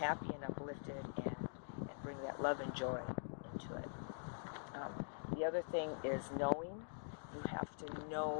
and uplifted and bring that love and joy into it. The other thing is knowing. You have to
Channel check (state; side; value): silent; right; digital silence